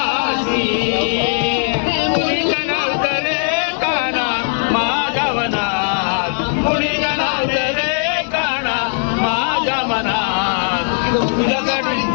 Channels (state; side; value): silent; right; 63 dB below the other